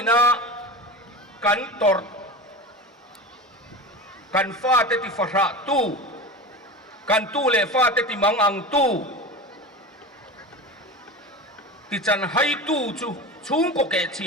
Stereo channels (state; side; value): normal; both; correlation 0.28